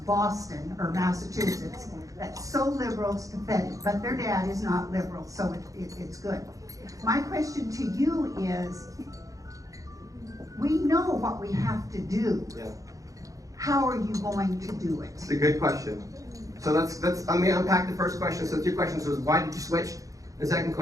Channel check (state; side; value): late; left; 0.16 ms